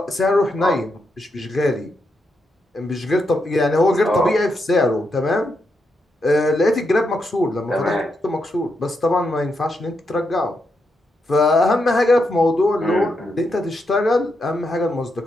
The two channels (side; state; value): both; normal; correlation 0.82